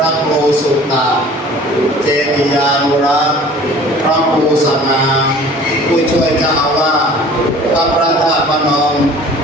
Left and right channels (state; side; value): normal; both; correlation 0.47